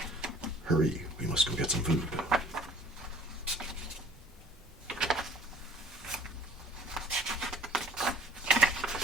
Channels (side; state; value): both; normal; correlation 0.50